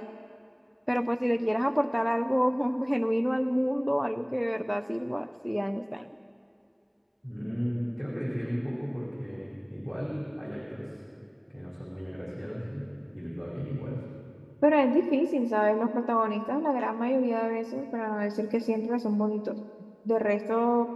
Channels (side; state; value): both; identical; correlation 1.00